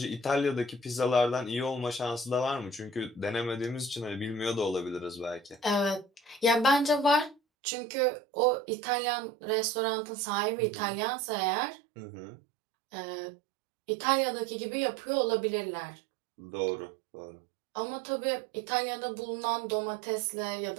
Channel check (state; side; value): drops out; left; at 7.4 s